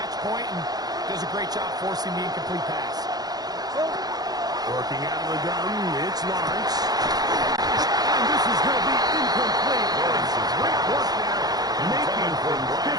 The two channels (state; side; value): late; left; 0.19 ms